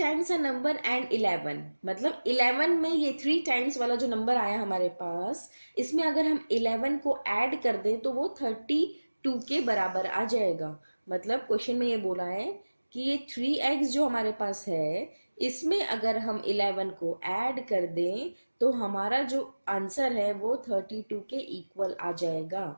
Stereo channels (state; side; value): inverted; both; correlation -1.00